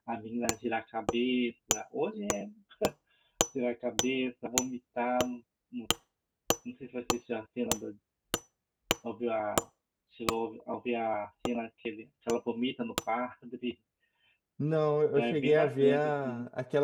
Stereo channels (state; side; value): identical; both; correlation 1.00